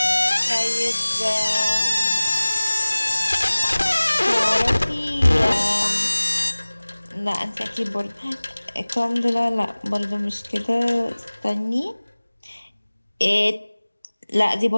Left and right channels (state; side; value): inverted; both; correlation -1.00